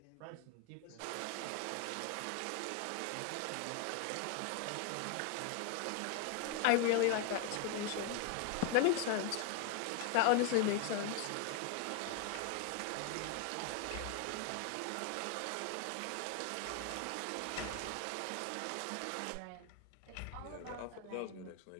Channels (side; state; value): both; different; correlation 0.00